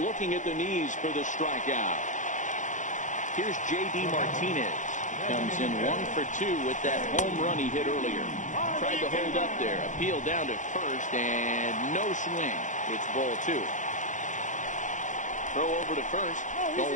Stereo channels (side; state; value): right; late; 0.36 ms